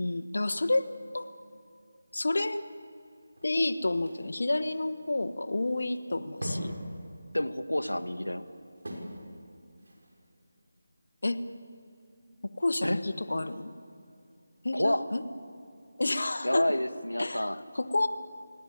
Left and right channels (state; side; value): inverted; both; correlation -0.99